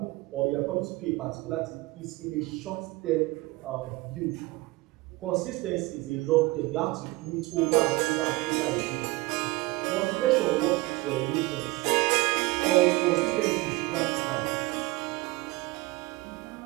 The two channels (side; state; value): left; quieter; 21.6 dB